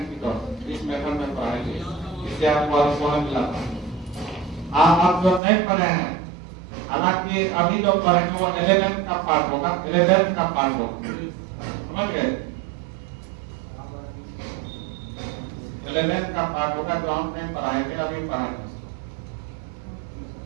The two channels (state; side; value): drops out; left; at 5.4 s